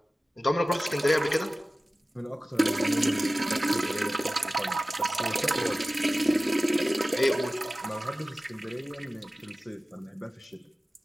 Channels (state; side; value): normal; both; correlation 0.96